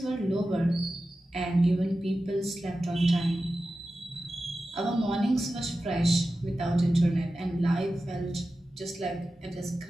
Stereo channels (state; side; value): normal; both; correlation 0.93